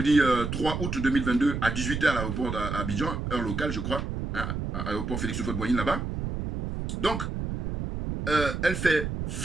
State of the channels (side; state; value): right; noise; rumble, 4 dB below the sound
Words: 3 août 2022 à 18 h à l'aéroport d'Abidjan, heure locale, je crois, hein, à l'aéroport Félix Houphouët-Boigny là-bas. Donc, elle fait